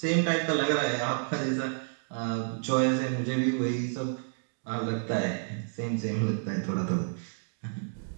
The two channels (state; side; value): silent; left; digital silence